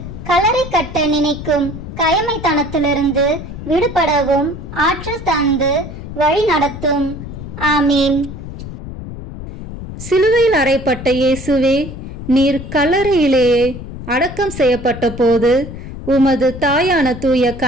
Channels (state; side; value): noise; left; rumble, 10 dB below the sound